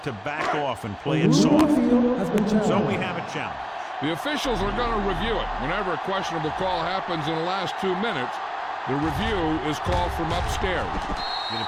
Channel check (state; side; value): identical; both; correlation 1.00